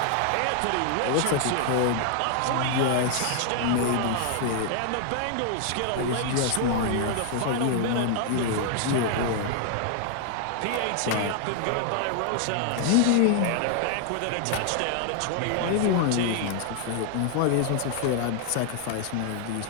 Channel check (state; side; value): different; both; correlation 0.00